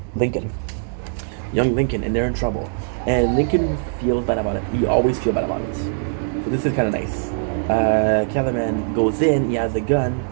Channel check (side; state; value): left; silent; digital silence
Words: Lincoln. Young Lincoln, and they're in trouble. And Lincoln feels bad about it. He always feels bad about it. So this is kind of nice. Kellerman goes in, he has a gun.